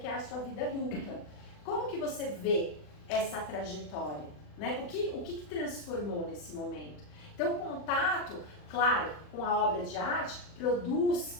é a sua vida adulta. Como que você vê essa trajetória, né? O que transformou nesse momento? Então o contato, claro, com a obra de arte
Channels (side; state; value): right; late; 40 ms